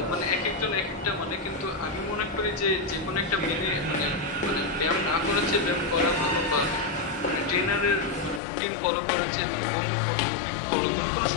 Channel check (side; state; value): right; drops out; at 8.4 s